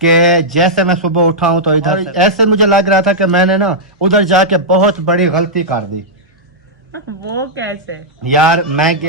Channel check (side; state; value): both; normal; correlation -0.09